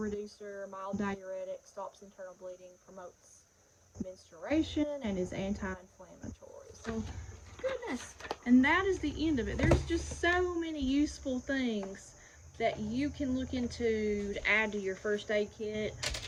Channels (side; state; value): both; identical; correlation 1.00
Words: mild diuretic, stops internal bleeding, promotes menstruation, and is anti-inflammatory. So, goodness. And that is the end of it. There's just so many useful things that you can look into to add to your first aid kit,